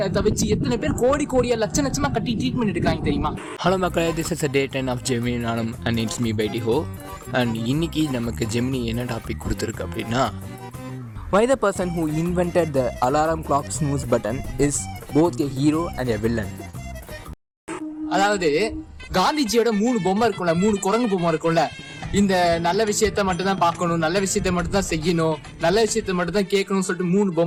வச்சு எத்தனை பேர் கோடியா லட்சமா கட்டி ட்ரீட்மெண்ட் எடுக்காங்க தெரியுமா? ஹலோ மக்களே, this is day 10 of Gemini நானும் அண்ட் இட்ஸ் மீ பை டிஹோ. அண்ட் இன்னைக்கு நமக்கு ஜெமினி என்ன டாபிக் கொடுத்துருக்கு அப்படின்னா, why the person who invented the alarm clock snooze button is both a hero and a villain. அதாவது காந்திஜியோட 3 பொம்மை இருக்கும்ல, 3 குரங்கு பொம்மை இருக்கும்ல. இந்த நல்ல விஷயத்த மட்டும் தான் பார்க்கணும், நல்ல விஷயத்த மட்டும் தான் செய்யணும், நல்ல விஷயத்த மட்டும் தான் கேட்கணும்னு சொல்லிட்டு 3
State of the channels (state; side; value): identical; both; correlation 1.00